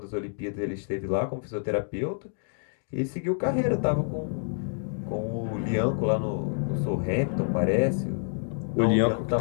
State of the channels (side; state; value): right; silent; digital silence